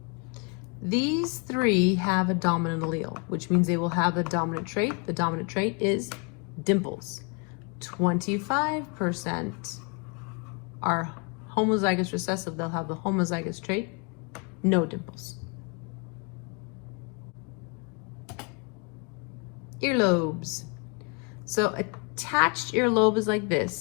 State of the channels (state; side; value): quieter; right; 33.4 dB